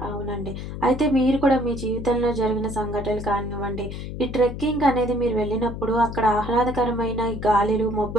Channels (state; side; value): noise; left; hum, 8 dB below the sound